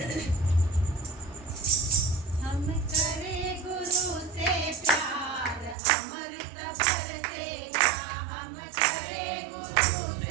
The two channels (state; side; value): drops out; left; at 5.8 s